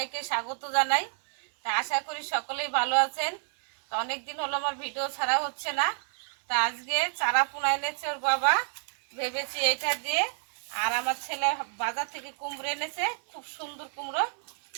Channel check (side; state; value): left; silent; 59 dB below the other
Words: স্বাগত জানাই। তা আশা করি সকলেই ভালো আছেন। তা অনেক দিন হলো আমার ভিডিও ছাড়া হচ্ছে না। তা আজকে চারা পোনা এনেছে ওর বাবা, ভেবেছি এটা দিয়ে। আর আমার ছেলে বাজার থেকে কুমড়ো এনেছে, খুব সুন্দর কুমড়ো।